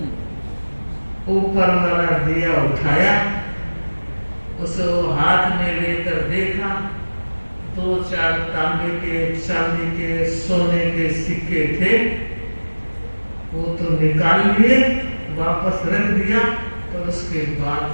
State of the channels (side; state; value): both; inverted; correlation -1.00